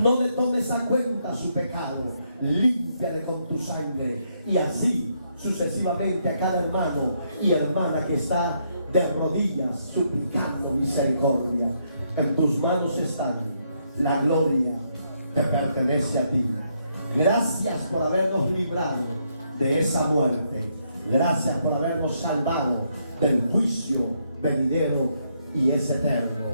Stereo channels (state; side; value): inverted; both; correlation -0.75